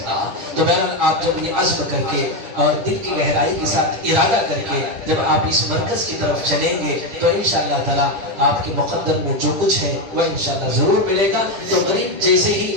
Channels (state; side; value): late; left; 10 ms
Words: تو بہرحال آپ جب یہ عزم کر کے اور دل کی گہرائی کے ساتھ ارادہ کر کے جب آپ اس مرکز کی طرف چلیں گے تو انشاءاللہ تعالی آپ کے مقدر میں جو کچھ ہے وہ انشاءاللہ ضرور ملے گا۔ تو غریب جیسے ہی